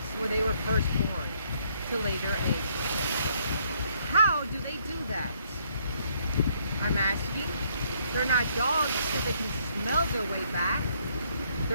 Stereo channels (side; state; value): both; inverted; correlation -0.68